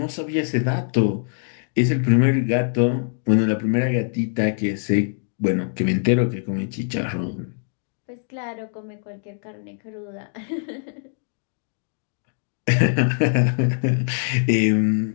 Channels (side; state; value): right; silent; digital silence